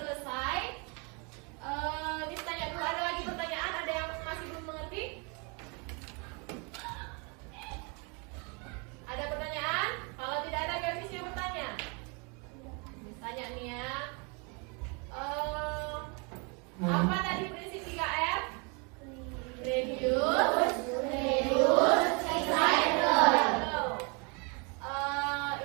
Miss tanya dulu, ada lagi pertanyaan? Ada yang masih belum mengerti? Ada pertanyaan? Kalau tidak ada, biar Miss yang bertanya. Miss tanya nih ya. Apa tadi prinsip 3R? Reduce, recycle.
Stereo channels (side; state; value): left; quieter; 32.8 dB